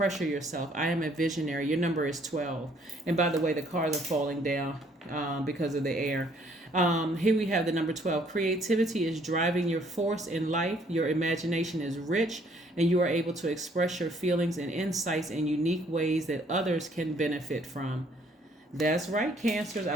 yourself. I am a visionary. Your number is 12. And by the way, the cars are falling down because of the air. Here we have the number 12. Creativity is driving your force in life. Your imagination is rich, and you are able to express your feelings and insights in unique ways that others can benefit from. That's right, Cancers.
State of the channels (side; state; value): both; normal; correlation 0.63